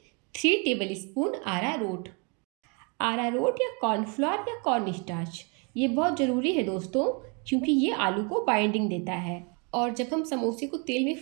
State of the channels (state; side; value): quieter; left; 34.5 dB